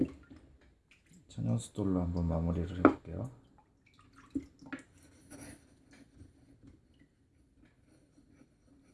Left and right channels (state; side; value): identical; both; correlation 1.00